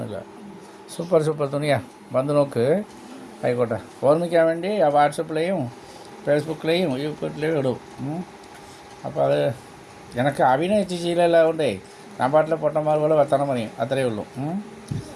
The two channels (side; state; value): both; identical; correlation 1.00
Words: സൂപ്പർ തുണിയാണ്. വന്ന് നോക്ക്. ആയിക്കോട്ടെ. ഓർമ്മിക്കാൻ വേണ്ടി വാട്സപ്പിലെയും ഫേസ്ബുക്കിലെയും യൂട്യൂബിലെയും ഇടും. അപ്പോൾ അത് എനിക്ക് അഭിനയിച്ച് ശീലമെല്ലാം കൊണ്ടേ ഞാൻ പാട്ടിലെ പൊട്ടന്മാർ പോലെ വർത്തണം പറയും, അത്രയേ ഉള്ളൂ.